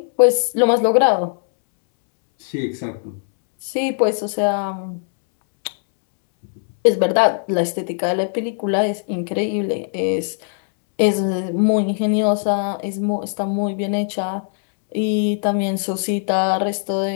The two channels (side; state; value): right; silent; 66 dB below the other